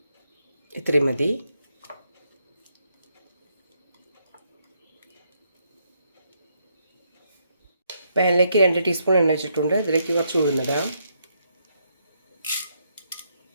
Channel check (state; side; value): inverted; both; correlation -0.76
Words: ഇത്രയും മതി. പാനിലേക്ക് 2 ടീസ്പൂൺ എണ്ണ വെച്ചിട്ടുണ്ട്. ഇതിലേക്ക് കുറച്ച് ഉഴുന്നിടാം.